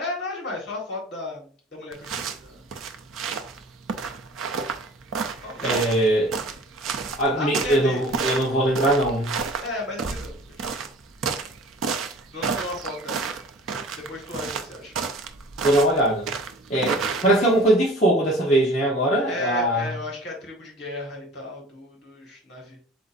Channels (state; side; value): normal; both; correlation 0.44